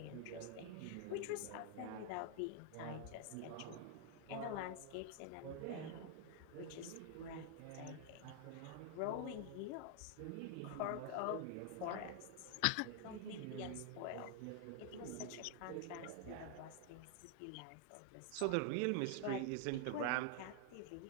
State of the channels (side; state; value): both; different; correlation 0.00